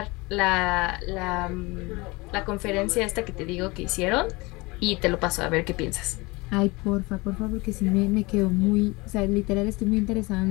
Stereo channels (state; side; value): quieter; right; 24.3 dB